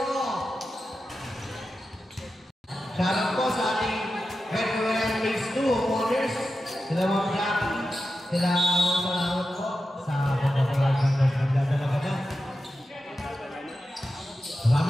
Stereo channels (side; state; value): both; normal; correlation 0.91